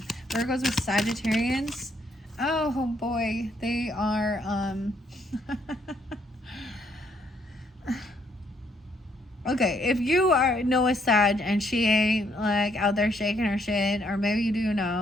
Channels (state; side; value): normal; both; correlation 0.70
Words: Virgos with Sagittarians. Oh boy, they are, okay, if you know a Sag and she ain't like out there shaking her shit, or maybe you do